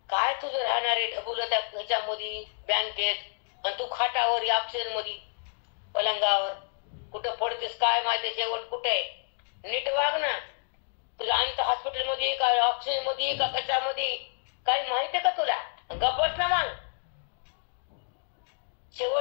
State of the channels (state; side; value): silent; right; digital silence